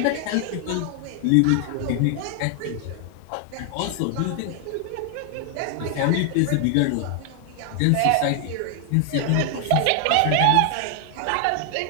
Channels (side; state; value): both; different; correlation 0.00